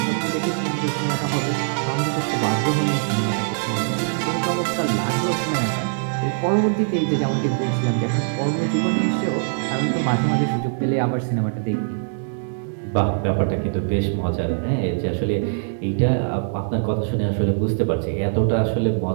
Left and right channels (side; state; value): left; silent; digital silence